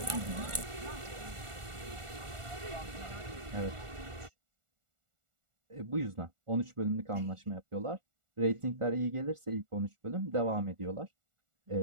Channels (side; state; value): left; late; 1.4 ms